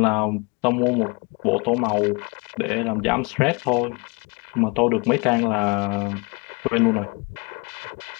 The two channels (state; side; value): quieter; right; 29.4 dB